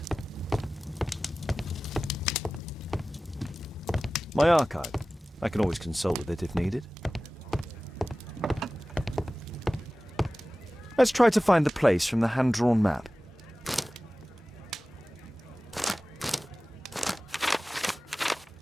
My archive. I can always consult with it if needed. Let's try to find the place from the hand-drawn map.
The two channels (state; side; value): normal; both; correlation 0.96